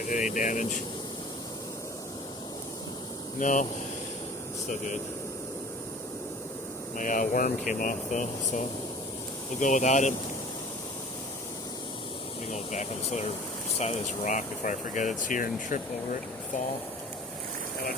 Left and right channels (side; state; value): both; normal; correlation 0.45